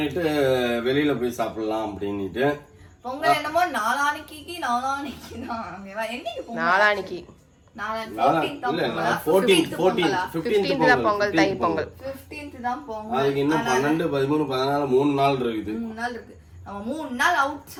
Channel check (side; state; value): both; identical; correlation 1.00